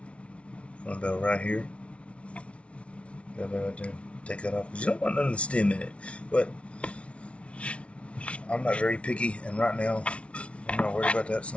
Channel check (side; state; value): right; late; 0.061 ms